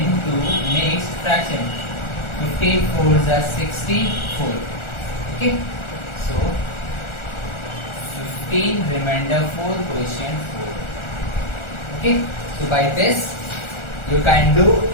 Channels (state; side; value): late; right; 1.4 ms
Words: mixed fraction. 15 4s are 64. Okay, so 15 remainder 4 quotient 4. Okay, so by this you can do